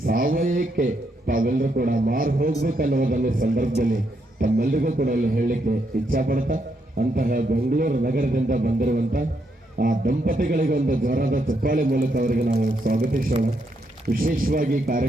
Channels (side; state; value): both; normal; correlation 0.78